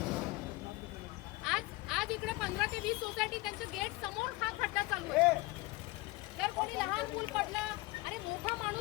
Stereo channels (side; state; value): right; quieter; 21.8 dB